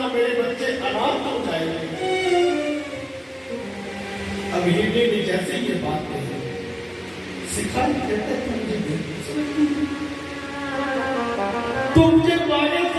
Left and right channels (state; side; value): identical; both; correlation 1.00